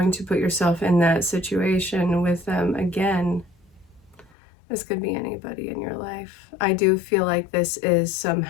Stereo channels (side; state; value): right; drops out; at 4.3 s